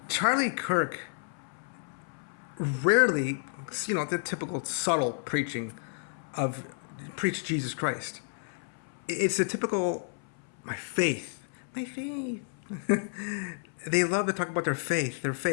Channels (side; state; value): right; silent; 57 dB below the other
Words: Charlie Kirk rarely, the typical subtle preaching of preach Jesus Christ. It's the typical my faith. They love to talk about their faith.